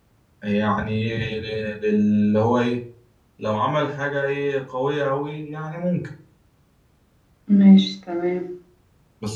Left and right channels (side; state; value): both; identical; correlation 1.00